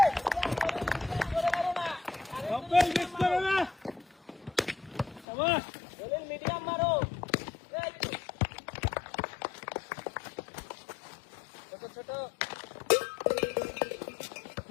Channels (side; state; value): right; drops out; at 5.2 s